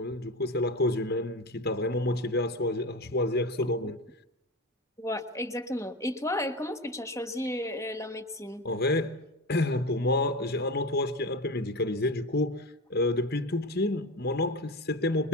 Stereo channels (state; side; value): normal; both; correlation 0.25